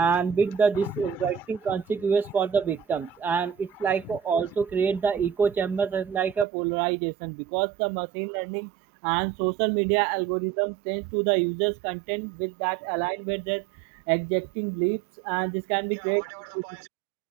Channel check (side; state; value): left; drops out; at 6.5 s